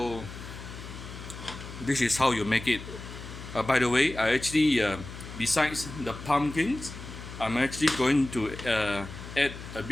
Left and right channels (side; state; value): left; noise; hum, 12 dB below the sound